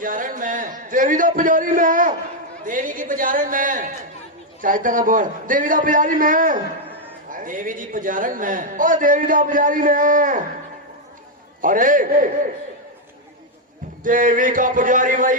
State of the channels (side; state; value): both; normal; correlation 0.01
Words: में, देवी दा पुजारी मैं, देवी की पुजारण में, चाहता ना बोल, देवी दा पुजारी मैं, देवी जी पुजारण में। ओ देवी दा पुजारी मैं। अरे देवी का पुजारी